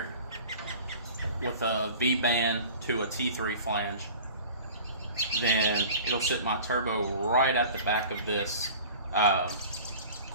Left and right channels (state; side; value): inverted; both; correlation -0.42